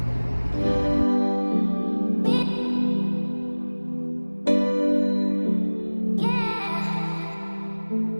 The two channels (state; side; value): inverted; both; correlation -1.00